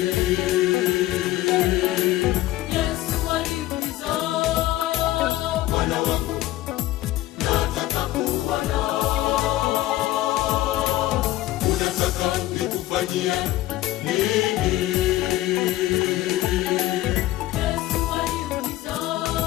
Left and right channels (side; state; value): right; quieter; 15.9 dB